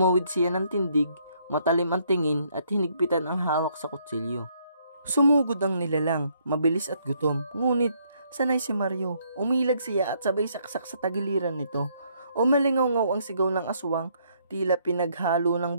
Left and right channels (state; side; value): inverted; both; correlation -0.69